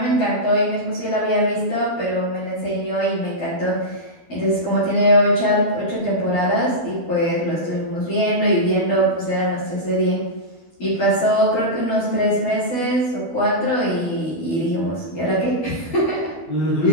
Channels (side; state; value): right; late; 12 ms